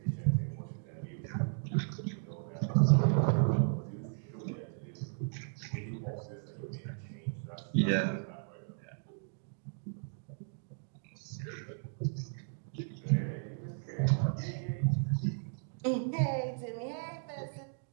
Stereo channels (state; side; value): silent; left; digital silence